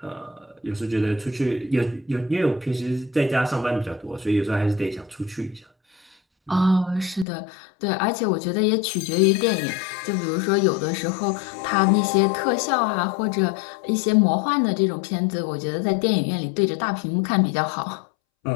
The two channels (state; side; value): drops out; right; at 7.2 s